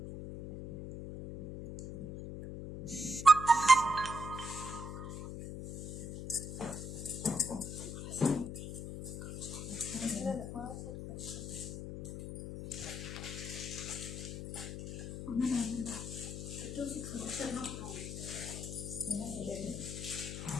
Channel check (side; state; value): left; noise; hum, 7 dB below the sound